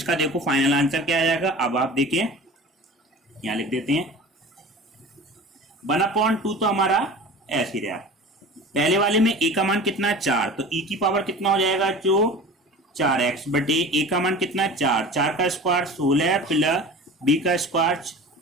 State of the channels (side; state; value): both; normal; correlation 0.37